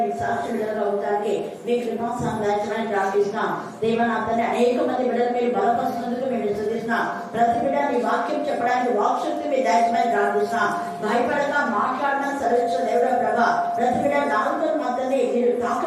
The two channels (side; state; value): both; identical; correlation 1.00